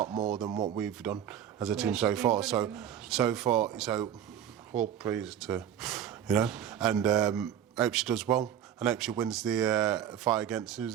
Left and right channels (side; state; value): left; quieter; 9.8 dB